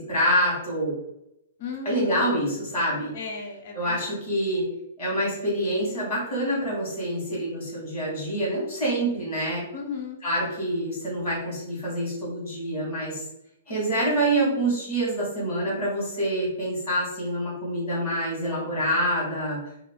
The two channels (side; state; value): both; inverted; correlation -0.39